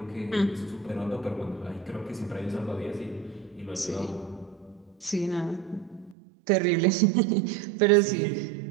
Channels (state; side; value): drops out; left; at 6.2 s